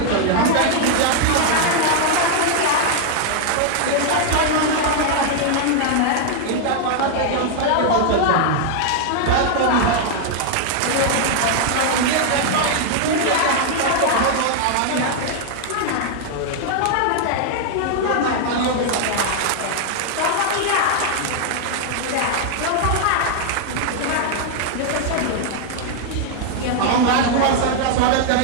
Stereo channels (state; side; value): different; both; correlation 0.00